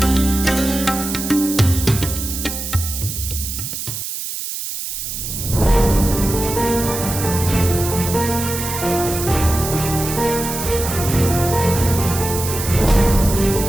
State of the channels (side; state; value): right; noise; hiss, 6 dB below the sound